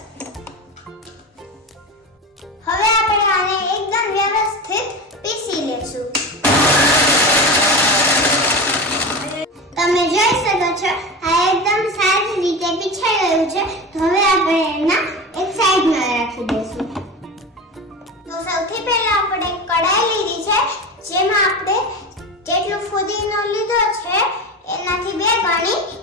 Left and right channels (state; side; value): normal; both; correlation 0.26